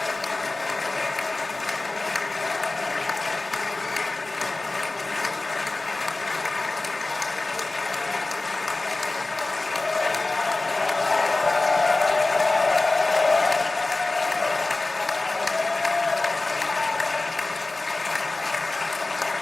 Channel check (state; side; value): quieter; right; 3.1 dB